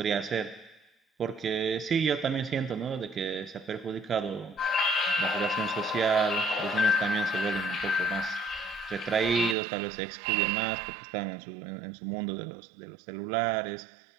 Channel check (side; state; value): left; drops out; at 9.6 s